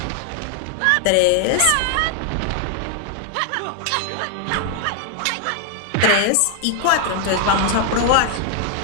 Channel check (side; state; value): both; different; correlation 0.00